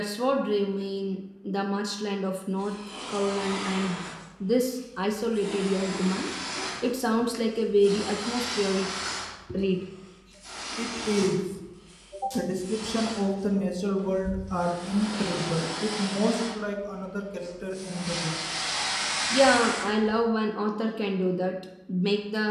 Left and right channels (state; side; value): identical; both; correlation 1.00